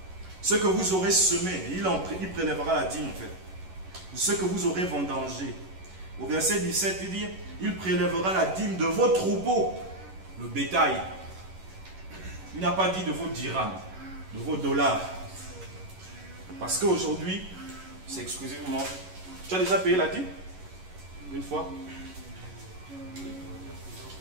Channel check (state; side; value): late; left; 11 ms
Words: Ce que vous aurez semé, il prélèvera la dîme en fait. De ce que vous aurez vendangé. Au verset 17, il dit, il prélèvera la dîme de vos troupeaux, le bétail. Il n'a pas dit de vos dirhams, de vos dollars. Parce qu'aujourd'hui, c'est exclusivement... Tu as déjà payé la dîme? Une fois?